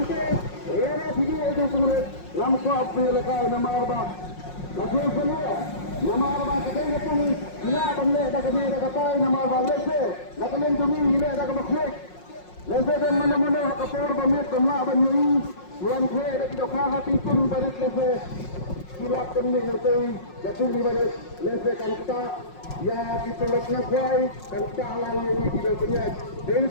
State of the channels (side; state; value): right; late; 5.5 ms